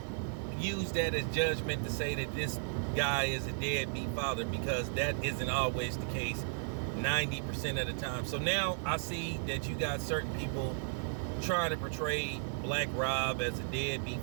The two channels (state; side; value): silent; left; digital silence